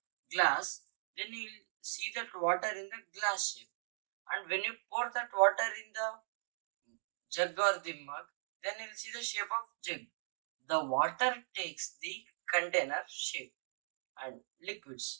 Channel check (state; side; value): silent; left; digital silence